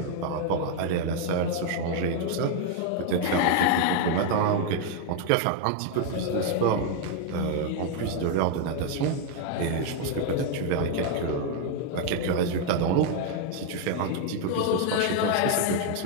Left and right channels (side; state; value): both; different; correlation 0.00